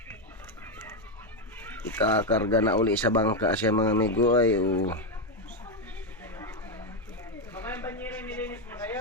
ikakarga na uli sa bangka siya mga amigo. Ay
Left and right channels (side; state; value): both; normal; correlation 0.06